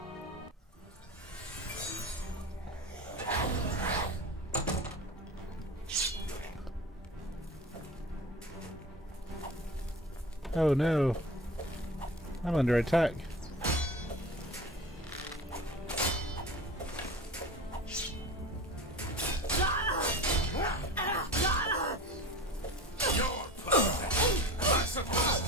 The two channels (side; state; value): both; normal; correlation 0.35